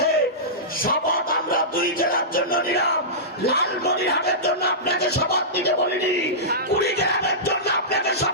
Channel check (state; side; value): normal; both; correlation -0.18